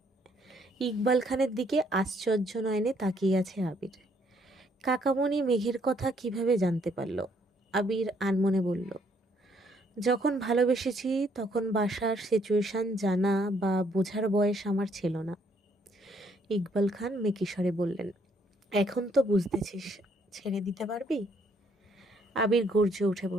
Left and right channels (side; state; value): both; normal; correlation 0.68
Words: ইকবাল খানের দিকে আশ্চর্য নয়নে তাকিয়ে আছে আবির। কাকামণি মেঘের কথা কিভাবে জানতে পারল? আবির আনমনে বলল, যখন ভালোবেসেছি তখন বাসার সিচুয়েশন জানা বা বোঝার বয়স আমার ছিল না। ইকবাল খান মেকিস্বরে বললেন, এখন তো বুঝতেছিস, ছেড়ে দিতে পারবি? আবির গর্জে উঠে